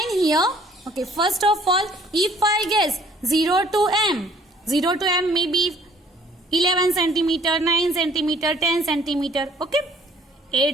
here. Okay, first of all, if I guess 0 to m, 0 to m may be 11 centimeter, 9 centimeter, 10 centimeter. Okay,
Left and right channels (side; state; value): both; normal; correlation 0.57